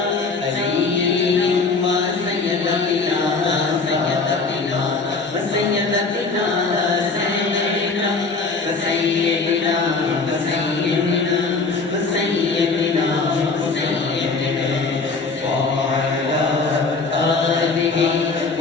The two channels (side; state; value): right; quieter; 4.1 dB